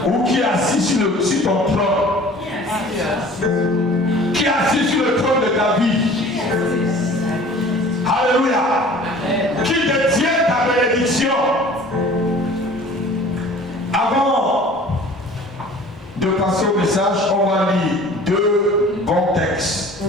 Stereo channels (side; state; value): both; normal; correlation 0.46